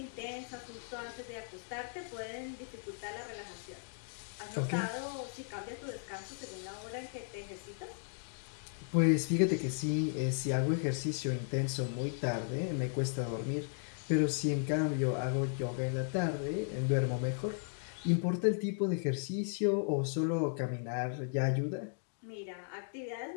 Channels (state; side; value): silent; right; digital silence